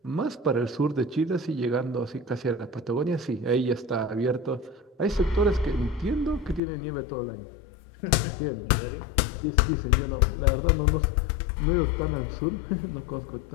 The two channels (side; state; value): right; drops out; at 6.6 s